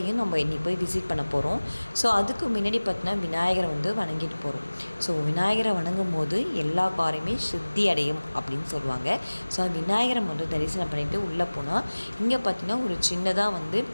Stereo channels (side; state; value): both; inverted; correlation -1.00